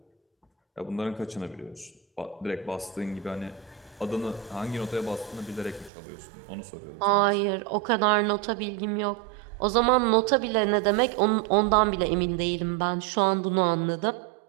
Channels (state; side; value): drops out; left; at 5.9 s